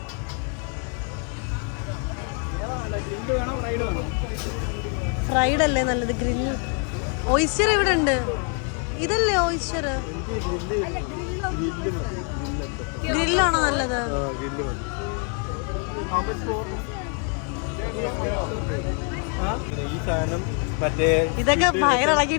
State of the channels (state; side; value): quieter; right; 39.7 dB